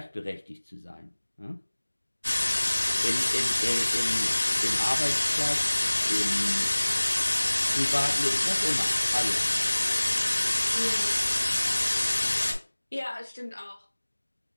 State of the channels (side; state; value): both; inverted; correlation -1.00